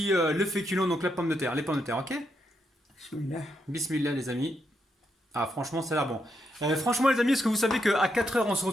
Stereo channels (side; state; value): both; normal; correlation 0.80